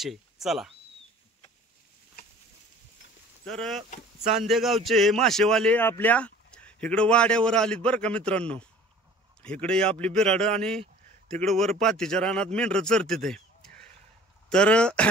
चला। तर चांदेगावचे हे मासेवाले आपल्या इकडे वाड्यावर आलीत बरं का मित्रांनो। इकडे आपली बिराड आणि तिकडे वर पातीच्या रानात मेंढर चरते। तर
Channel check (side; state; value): both; normal; correlation 0.48